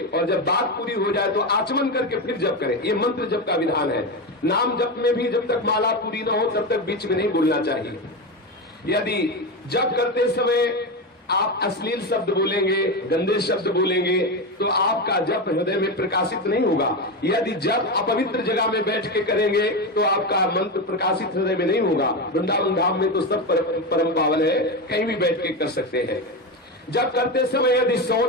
और जब बात पूरी हो जाए तो आचमन करके फिर जप करें। ये मंत्र जप का विधान है। नाम जप में भी जब तक माला पूरी ना हो तब तक बीच में नहीं बोलना चाहिए। यदि जप करते समय आप अश्लील शब्द बोलेंगे, गंदे शब्द बोलेंगे तो आपका जप हृदय में प्रकाशित नहीं होगा। यदि जप अपवित्र जगह में बैठ के करेंगे तो आपका मंत्र प्रकाशित हृदय में नहीं होगा। वृंदावन धाम में तो सब परम पावन है, कहीं भी बैठ के कर सकते हैं। जप करते समय यदि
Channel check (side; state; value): both; normal; correlation 0.16